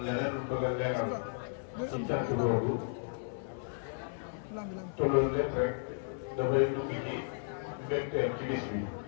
leneen lu bëgg a leeral ci cant boobu te loolu lépp rek dafay dugg ci mbégteem ci bis bi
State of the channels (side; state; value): right; silent; 55 dB below the other